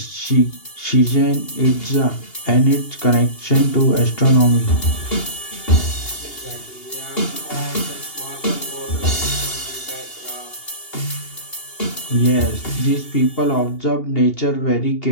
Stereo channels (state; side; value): late; right; 2.8 ms